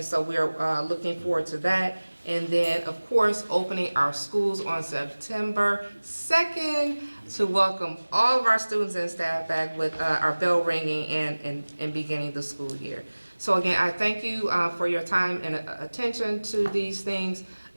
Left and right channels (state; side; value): inverted; both; correlation -1.00